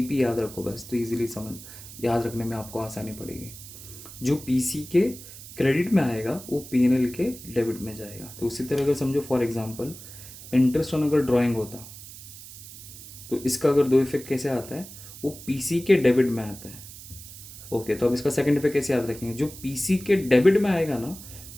याद रखो बस, तो इजीली समझ याद रखने में आपको आसानी पड़ेगी। जो पीसी के क्रेडिट में आएगा वो पीएनएल के डेबिट में जाएगा। तो उसी तरह अगर समझो फॉर एग्जांपल इंटरेस्ट ऑन अगर ड्राइंग होता, तो इसका अगर दो इफेक्ट कैसे आता है, वो पीसी के डेबिट में आता है। ओके, तो अब इसका सेकंड इफेक्ट कैसे याद रखेंगे, जो पीसी के डेबिट में आएगा ना,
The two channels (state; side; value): noise; right; hiss, 15 dB below the sound